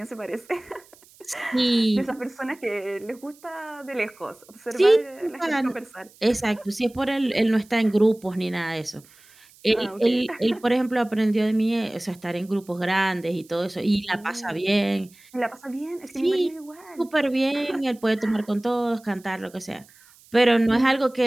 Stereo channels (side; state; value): right; noise; hiss, 27 dB below the sound